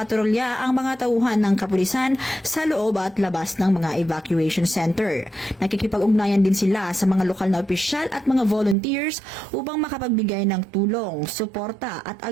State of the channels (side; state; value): left; drops out; at 8.8 s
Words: ang mga tauhan ng kapulisan sa loob at labas ng mga evacuation center. Nakikipag-ugnayan din sila sa mga lokal na opisyal at mga volunteers upang makapagbigay ng tulong, suporta at